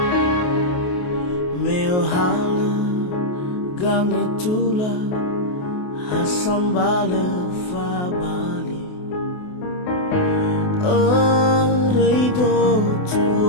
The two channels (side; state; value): right; late; 28 ms